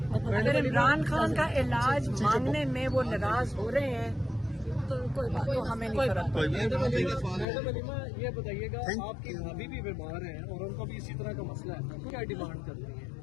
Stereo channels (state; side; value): drops out; right; at 7.5 s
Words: मतलब अगर इमरान खान का इलाज मांगने में वो नाराज हो रहे हैं तो कोई बात, तो हमें नहीं फर्क पड़ता। मैडम अलीमा, ये बताइएगा, आपकी भाभी भी बीमार हैं और उनको भी इसी तरह का मसला है, क्या डिमांड करती है?